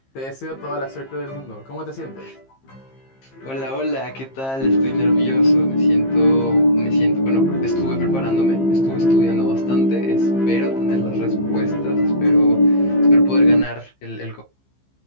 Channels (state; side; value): late; right; 15 ms